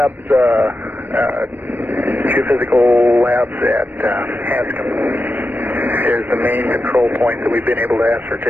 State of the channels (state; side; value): late; left; 0.091 ms